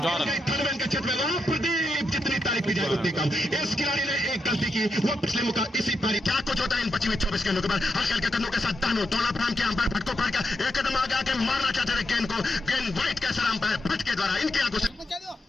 के क्षेत्र में वहां प्रदीप, जितनी तारीफ की जाए उतनी कम। इस खिलाड़ी ने एक गलती की, वो पिछले मौका इसी पारी, क्या कुछ होता है इन 25 गेंदों के बाद। हल्के हल्के कदमों के साथ दानू दौड़ा प्रेम के अंपायर भट्ट को पार किया, एक कदम आगे आके मारना चाहते थे गेंद को, गेंद वाइट के सर अंपायर भट्ट के द्वारा इनकी आंखों से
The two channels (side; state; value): both; normal; correlation 0.83